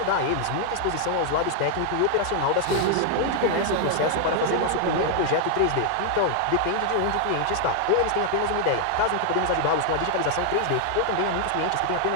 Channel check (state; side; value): different; both; correlation 0.00